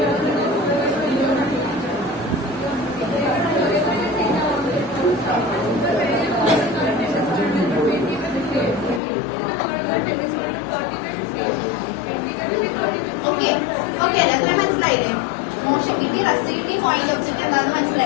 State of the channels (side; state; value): right; drops out; at 9.0 s